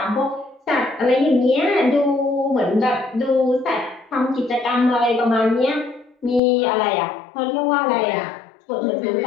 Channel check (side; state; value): right; drops out; at 6.4 s